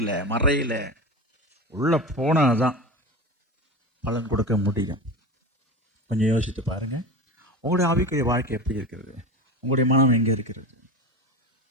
மறையில உள்ளே போனாதான் பலன் கொடுக்க முடியும். கொஞ்சம் யோசித்து பாருங்கள். உங்களுடைய ஆவிக்குரிய வாழ்க்கை எப்படி இருக்கிறது? உங்களுடைய மனம் எங்கே இருக்கிறது?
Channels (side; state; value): both; normal; correlation 0.26